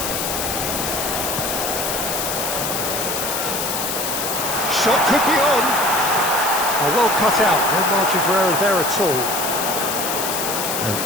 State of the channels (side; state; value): left; noise; hiss, 2 dB below the sound